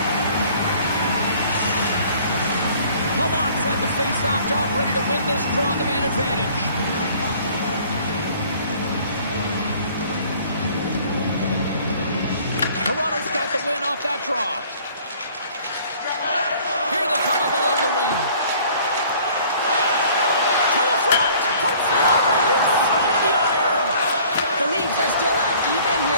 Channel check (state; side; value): inverted; both; correlation -0.53